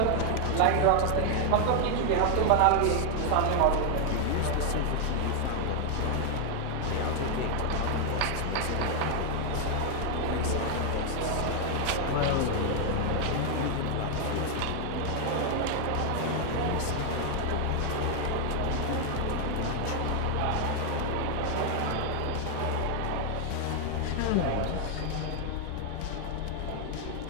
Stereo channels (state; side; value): different; both; correlation 0.00